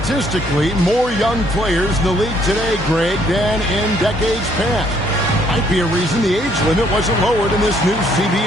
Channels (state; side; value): normal; both; correlation 0.66